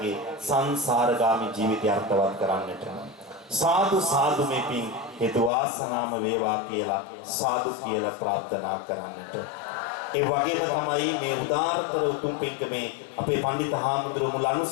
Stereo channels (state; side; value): drops out; right; at 5.5 s